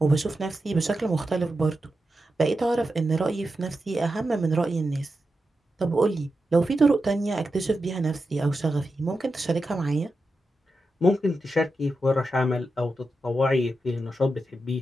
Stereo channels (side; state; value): both; normal; correlation 0.89